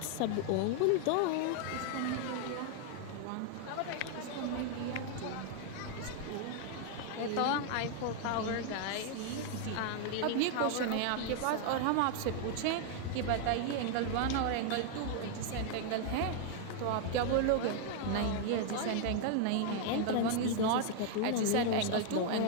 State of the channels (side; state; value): both; different; correlation 0.00